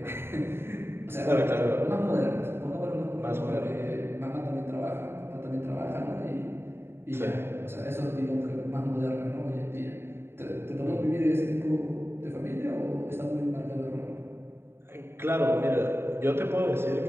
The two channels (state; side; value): late; left; 0.11 ms